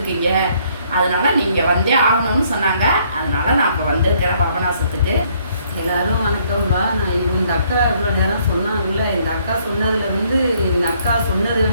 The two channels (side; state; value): both; inverted; correlation -0.66